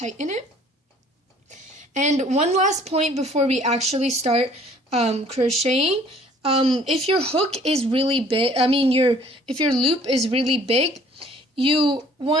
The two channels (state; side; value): normal; both; correlation 0.56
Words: it. And one last point before we actually start crocheting. If your hook is really big, if your loop is really big, you